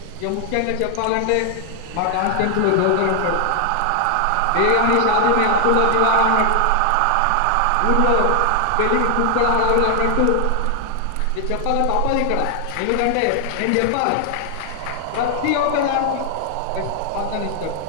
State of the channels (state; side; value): different; both; correlation 0.00